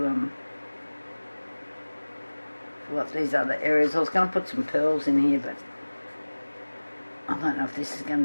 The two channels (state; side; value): inverted; both; correlation -1.00